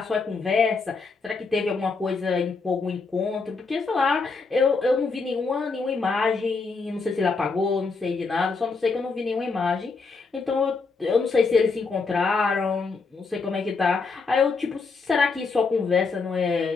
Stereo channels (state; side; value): quieter; right; 4.4 dB